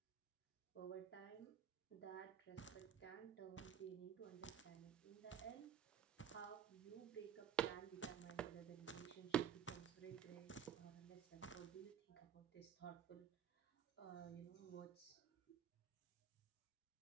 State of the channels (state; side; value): quieter; left; 8.7 dB